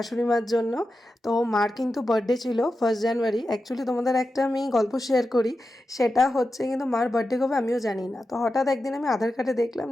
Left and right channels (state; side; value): normal; both; correlation 0.91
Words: মার জন্য। তো মার কিন্তু বার্থডে ছিল 1 জানুয়ারি। অ্যাকচুয়ালি তোমাদের একটা আমি গল্প শেয়ার করি, সেটা হচ্ছে কিন্তু মার বার্থডে কবে আমিও জানি না। তো হঠাৎ একদিন আমি আধার কার্ডে দেখলাম